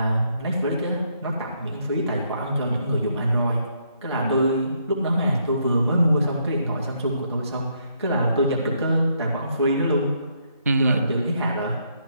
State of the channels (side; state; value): both; inverted; correlation -0.73